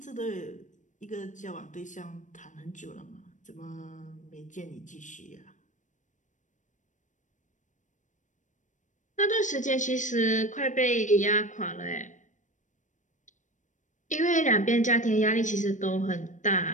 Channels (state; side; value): late; right; 0.36 ms